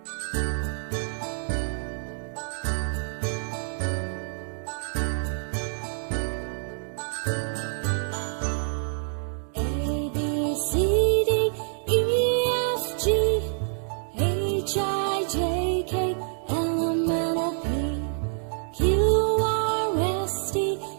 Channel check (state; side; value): silent; left; 60 dB below the other